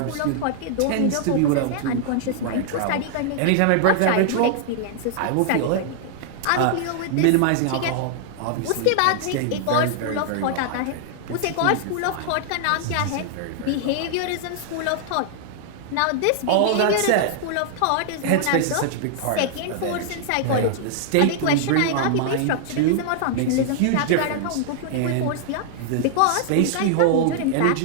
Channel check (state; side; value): different; both; correlation -0.01